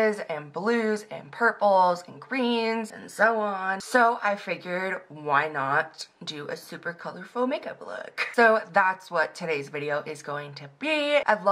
and blues and purples and greens and so on. So I figured, why not do a super colorful makeup look? So that's what today's video is going to be. I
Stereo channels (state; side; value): identical; both; correlation 1.00